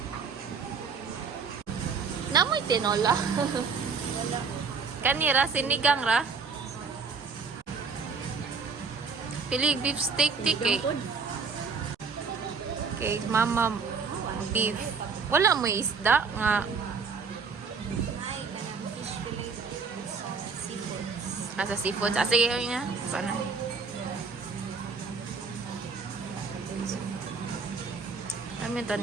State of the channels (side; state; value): left; quieter; 5.1 dB